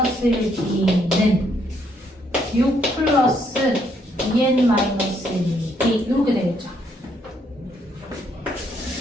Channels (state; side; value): normal; both; correlation 0.71